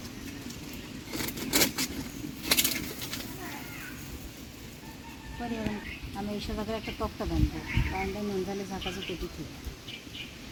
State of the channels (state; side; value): identical; both; correlation 1.00